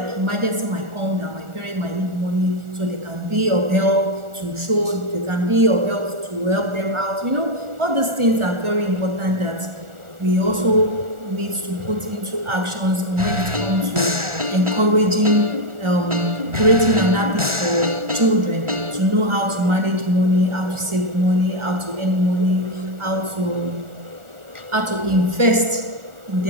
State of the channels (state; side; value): late; left; 1.4 ms